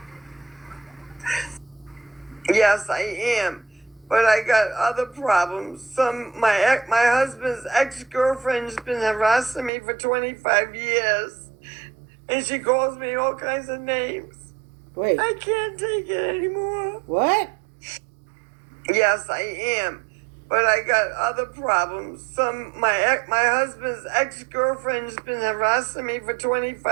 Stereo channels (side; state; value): left; drops out; at 9.7 s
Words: Yes, I am. but I got other problems. My husband's ex-girlfriend's been harassing me for 25 years, and she calls me all kinds of names. Wait. I can't take it anymore. What? Yes, I am. But I got other problems. My husband's ex-girlfriend's been harassing me for